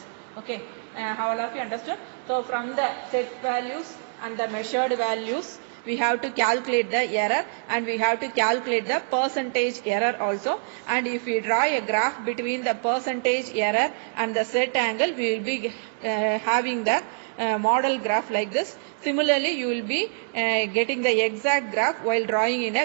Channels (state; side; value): silent; left; digital silence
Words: Okay, how all of you understood? So from the set values and the measured values, we have to calculate the error and we have to calculate the percentage error also. And if we draw a graph between the percentage error and the set angle, we will be having the model graph like this. Similarly, you will be getting the exact graph while drawing in